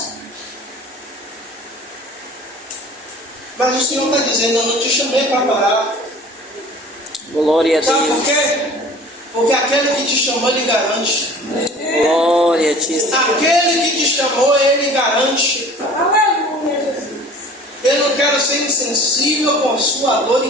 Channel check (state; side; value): normal; both; correlation 0.45